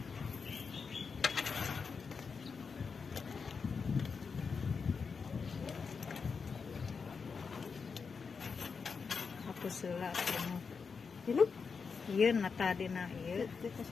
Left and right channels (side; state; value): right; quieter; 5.4 dB